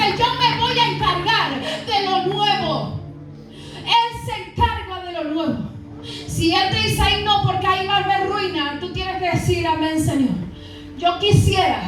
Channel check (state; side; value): identical; both; correlation 1.00